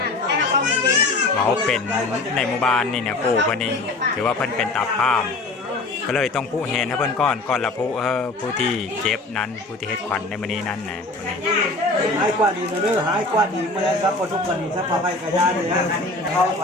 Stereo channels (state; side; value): quieter; right; 3.0 dB